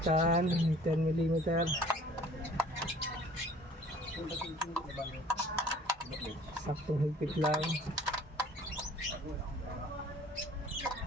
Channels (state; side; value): normal; both; correlation 0.52